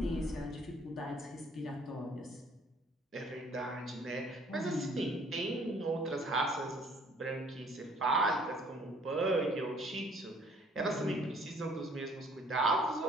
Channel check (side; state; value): both; normal; correlation 0.58